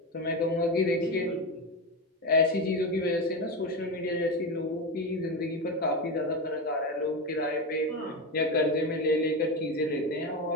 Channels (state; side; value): normal; both; correlation 0.17